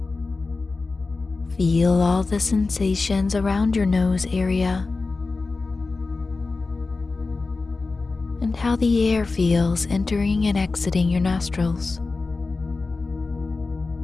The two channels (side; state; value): right; quieter; 3.8 dB